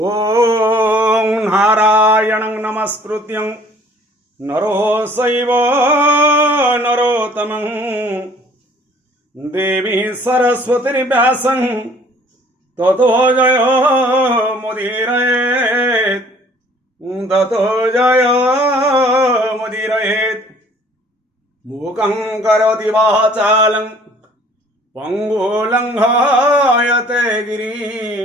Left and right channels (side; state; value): both; normal; correlation 0.55